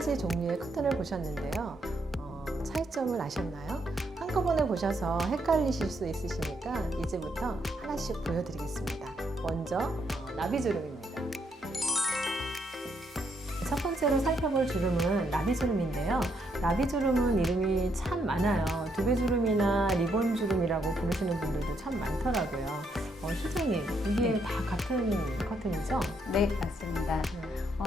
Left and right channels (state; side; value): normal; both; correlation 0.75